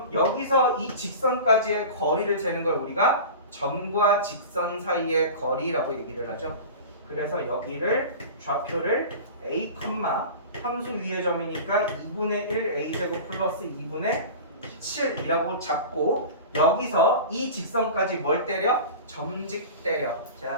여기서 이 직선까지의 거리를 재는 걸 우리가 점과 직선 사이의 거리라고 얘기를 하죠. 그래서 여기를 좌표를 a, 함수 위의 점이니까 2분의 1 a제곱 플러스 2분의 7이라고 잡고 여기서 이 직선까지 뭘 때려? 점직 때려.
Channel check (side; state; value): both; inverted; correlation -0.34